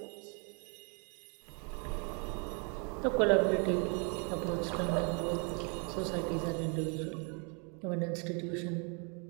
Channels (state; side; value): quieter; left; 36.3 dB